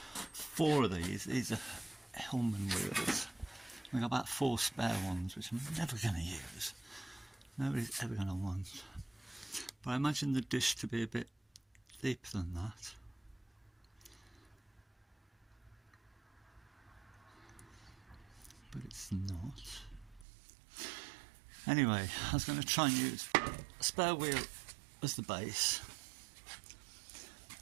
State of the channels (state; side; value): drops out; left; at 20.2 s